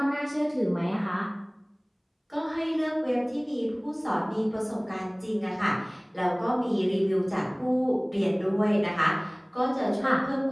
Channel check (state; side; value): identical; both; correlation 1.00